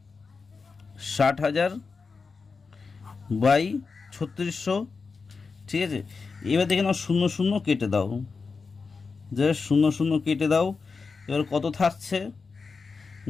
60,000 / 3600, ঠিক আছে। এবার দেখে নাও 0 কেটে দাও, যে 0 কেটে দাও, এবার কত থাকছে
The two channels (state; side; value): quieter; right; 4.7 dB